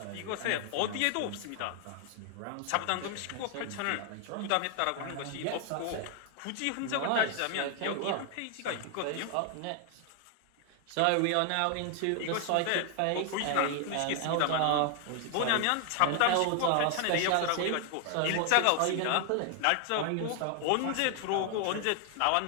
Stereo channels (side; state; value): both; different; correlation 0.00